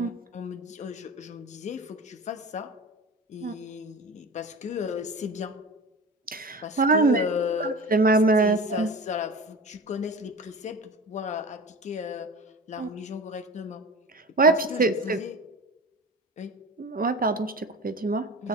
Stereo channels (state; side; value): normal; both; correlation 0.34